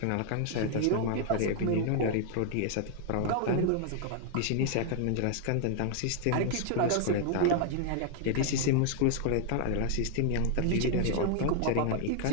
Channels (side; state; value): both; different; correlation 0.00